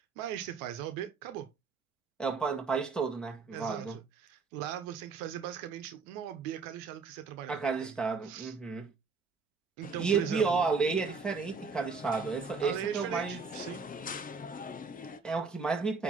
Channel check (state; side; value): quieter; left; 4.9 dB